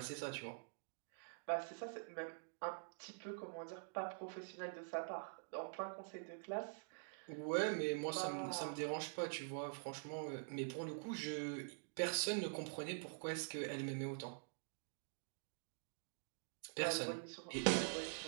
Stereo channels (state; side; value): silent; left; digital silence